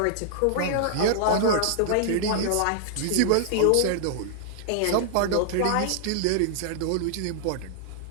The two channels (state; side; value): different; both; correlation -0.01